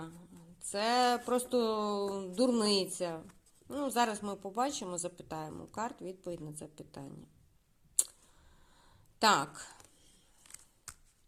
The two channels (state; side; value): identical; both; correlation 1.00